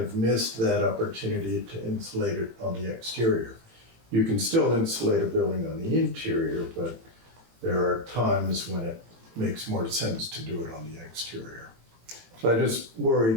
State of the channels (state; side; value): late; left; 18 ms